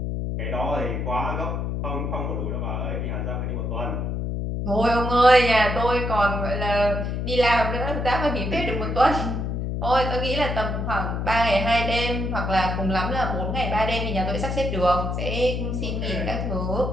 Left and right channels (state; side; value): noise; left; hum, 2 dB below the sound